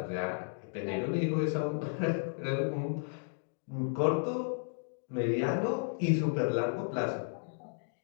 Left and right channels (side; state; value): right; silent; digital silence